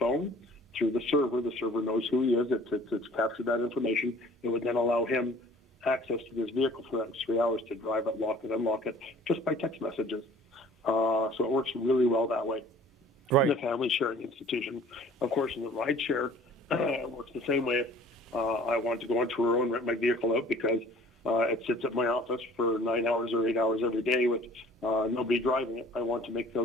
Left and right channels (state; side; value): normal; both; correlation 0.50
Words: through the server knows who he is. It's captured that information. It would then allow him access to his vehicle for that 3 hours to drive it, lock it, unlock it, just by text messages. So it works really well that way. Right. In the family sharing institution. Of course, in the ride share, it works the same way. I want to go on Turo and rent my vehicle out because it sits at my office for 9 hours or 8 hours every day with nobody driving it. I want to make